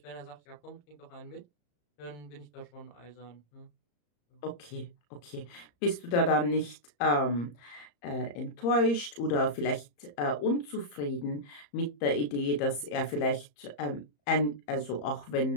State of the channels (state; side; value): late; right; 34 ms